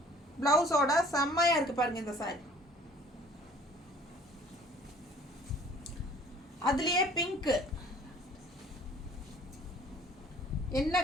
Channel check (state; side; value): normal; both; correlation 0.53